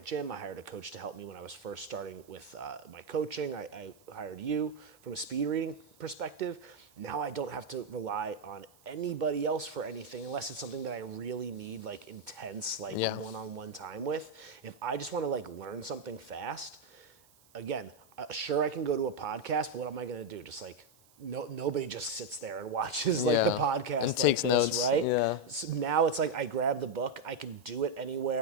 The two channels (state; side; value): noise; right; hiss, 29 dB below the sound